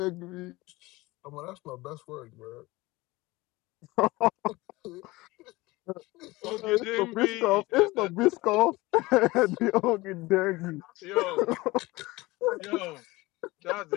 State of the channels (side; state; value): right; quieter; 20.9 dB